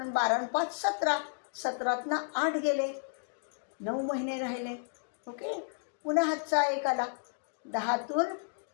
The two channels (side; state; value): right; silent; digital silence